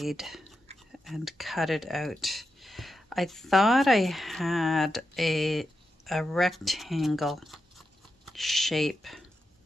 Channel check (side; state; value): both; normal; correlation 0.88